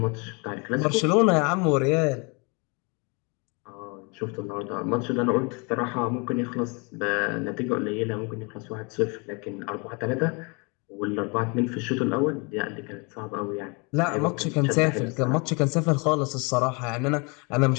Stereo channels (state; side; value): quieter; right; 31.3 dB